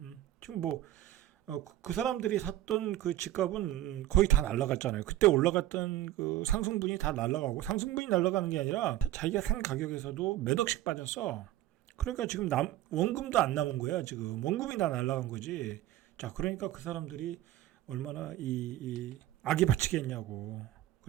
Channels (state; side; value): quieter; left; 14.2 dB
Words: 지금 그 사람들이 샀던 그 집값은 거의 다 날라갔잖아요. 그때 올라갔던 그 상승분이 다 날라가고, 상승분이 날라가는 게 아니라 자기가 산 가격에서도 몇 억씩 빠졌어. 그러니까 지금 원금도 안 남은 거야. 지금 원금이 다 날라간 거지. 자, 그러니까 그 사람들이 얼마나 이 악이 바치겠냐고.